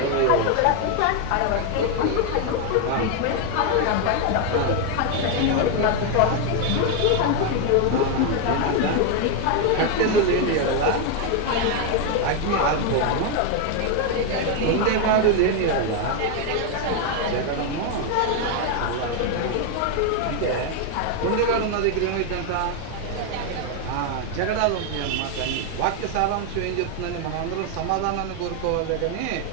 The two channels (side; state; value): both; different; correlation 0.01